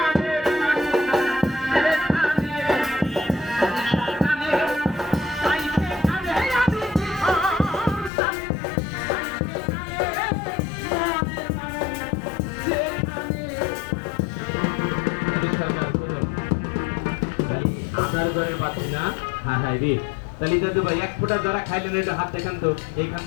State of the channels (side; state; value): right; drops out; at 8.1 s